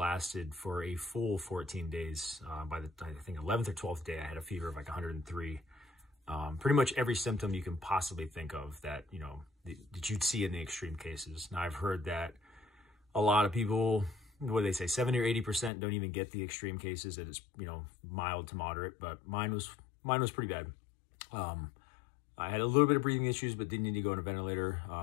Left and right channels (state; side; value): drops out; right; at 15.7 s